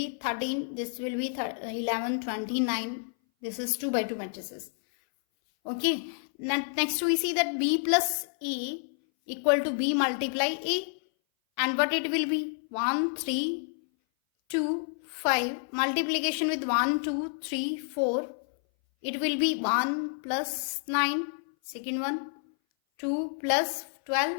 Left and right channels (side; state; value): right; silent; 58 dB below the other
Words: 13, this will be 11, 29, this is 2 by 2 matrices. Okay, next we see that B plus A equal to B multiply A, and what it will be? 1, 3, 2, 5, multiplication with 1, 2, 3, 4, it will be 1 plus 9, second one, 2 plus 12,